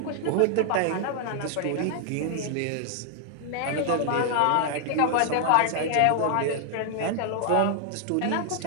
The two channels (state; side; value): different; both; correlation 0.00